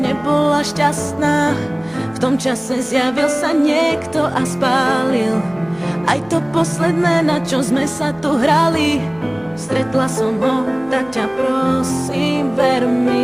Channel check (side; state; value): left; noise; hum, 27 dB below the sound